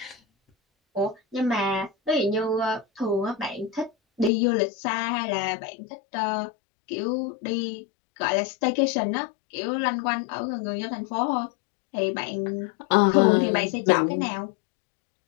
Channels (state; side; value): drops out; right; at 4.3 s